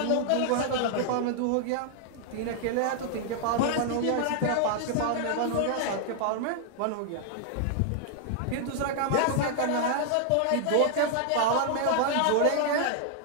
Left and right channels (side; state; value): both; different; correlation -0.01